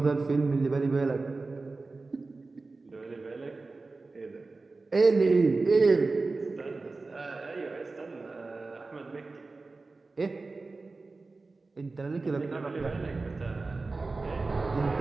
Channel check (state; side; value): quieter; left; 3.7 dB